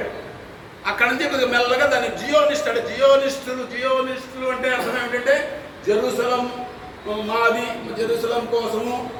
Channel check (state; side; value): identical; both; correlation 1.00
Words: అక్కడి నుంచి కొద్దిగా మెల్లగా దాన్ని జియోనిస్టులు అంటే అర్థం ఏమిటంటే జెరూసలం మాది, జెరూసలం కోసము